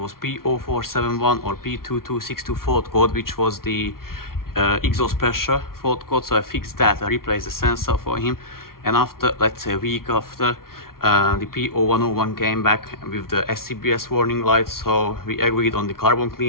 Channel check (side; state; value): right; late; 0.93 ms